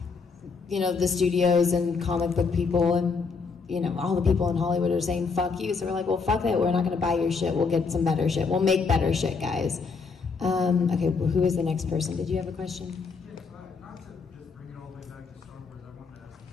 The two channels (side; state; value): right; quieter; 4.9 dB